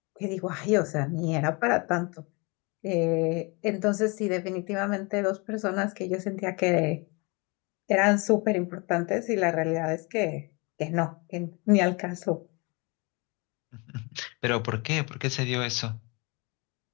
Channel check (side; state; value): right; quieter; 29.0 dB